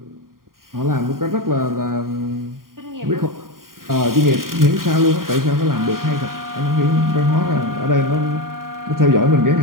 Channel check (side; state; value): left; late; 0.91 ms